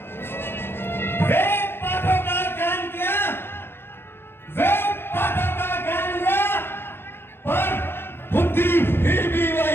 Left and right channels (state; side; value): late; right; 0.11 ms